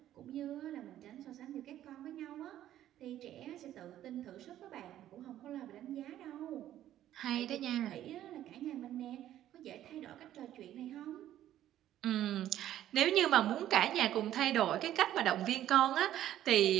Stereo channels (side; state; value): left; quieter; 12.3 dB